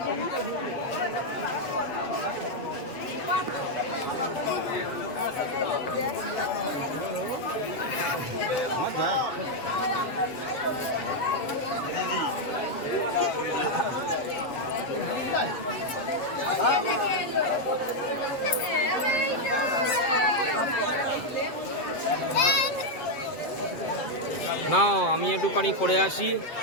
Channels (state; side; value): late; right; 7.6 ms